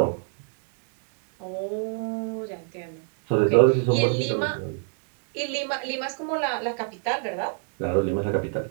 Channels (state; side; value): silent; left; 56 dB below the other